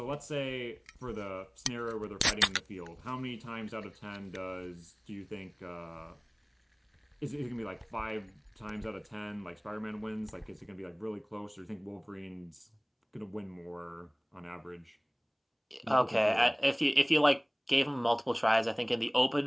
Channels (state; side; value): identical; both; correlation 1.00